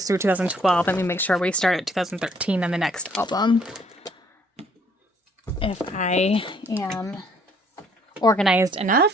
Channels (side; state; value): both; normal; correlation 0.63